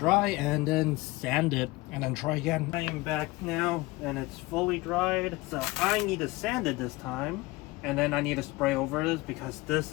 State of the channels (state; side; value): quieter; right; 21.1 dB